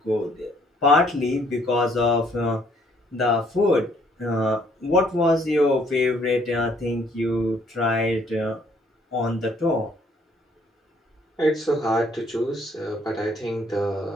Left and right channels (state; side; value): normal; both; correlation 0.64